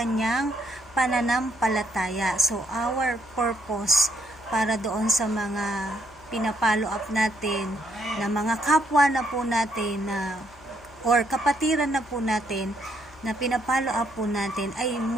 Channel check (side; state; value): left; noise; hum, 25 dB below the sound